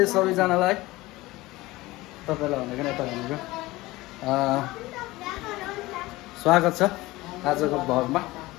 सबैजनालाई तपाईँलाई भनेको नि यता भनेको स्वागत छ आजको भ्लगमा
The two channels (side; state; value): right; quieter; 19.5 dB